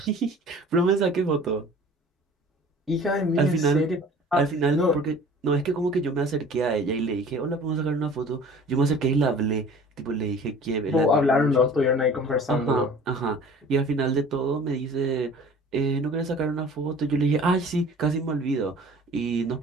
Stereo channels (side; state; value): both; normal; correlation 0.46